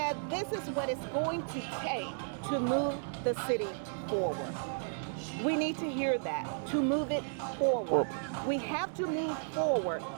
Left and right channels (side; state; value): left; silent; digital silence